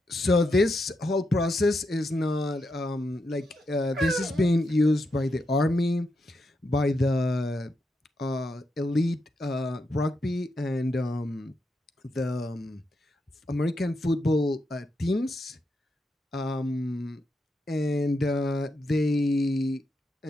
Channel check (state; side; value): normal; both; correlation 0.84